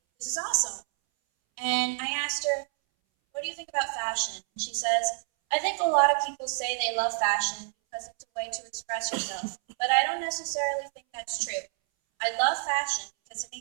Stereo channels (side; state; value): left; silent; 59 dB below the other